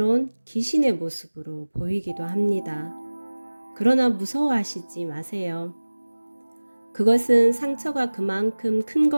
귀신의 모습으로 보이기도 합니다. 그러나 무서워하시지 마세요. 그것은 상처가 그만큼 큰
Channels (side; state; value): both; inverted; correlation -1.00